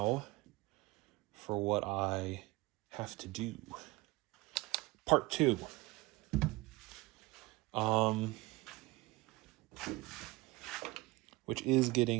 for what I have to do. Part 2. Which is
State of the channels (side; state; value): left; quieter; 21.8 dB